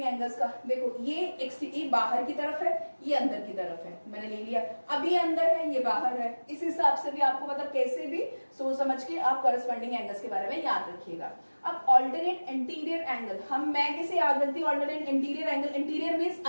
एंगल्स का। देखो ये बाहर की तरफ है, ये अंदर की तरफ है, मैंने ले लिया। अब ये अंदर है, ये बाहर है, इस हिसाब से भी आपको मतलब कैसे भी सोच समझ के आप कॉरेस्पॉन्डिंग एंगल्स के बारे में याद रखिएगा। अब ऑल्टरनेट एंटीरियर एंगल, मैं कैसे याद रखती हूँ alternate anterior angle, anterior means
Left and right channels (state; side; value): inverted; both; correlation -1.00